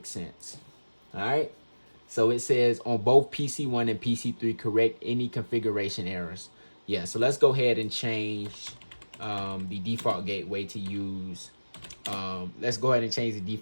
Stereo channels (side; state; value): both; inverted; correlation -1.00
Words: sense. All right. So it says on both PC1 and PC3, correct any configuration errors. Yeah. So let's go ahead and change the default gateway to use. Let's go ahead and change the